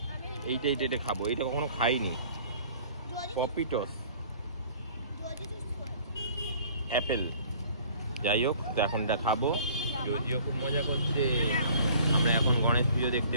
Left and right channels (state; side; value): inverted; both; correlation -0.52